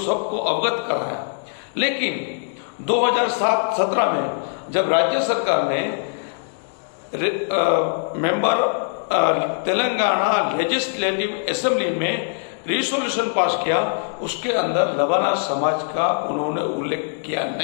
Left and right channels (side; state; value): right; silent; digital silence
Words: अवगत कराया। लेकिन 2017 में जब राज्य सरकार ने मेंबर तेलंगाना लेजिस्लेटिव असेंबली में रिसोल्यूशन पास किया, उसके अंदर लबाना समाज का उन्होंने उल्लेख किया